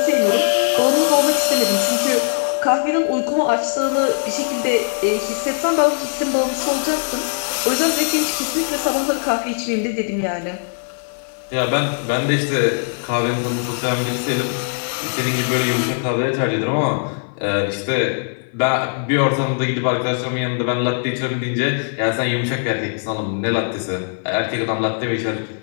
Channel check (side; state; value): right; silent; 57 dB below the other